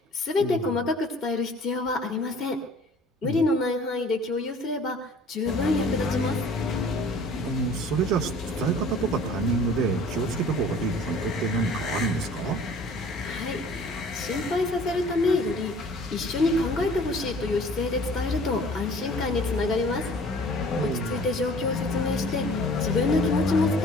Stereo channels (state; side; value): normal; both; correlation 0.49